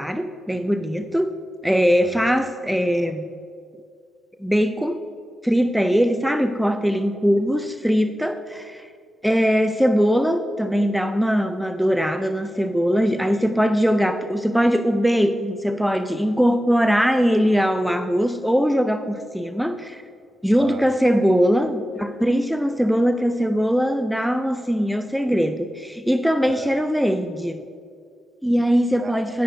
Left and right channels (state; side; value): normal; both; correlation 0.95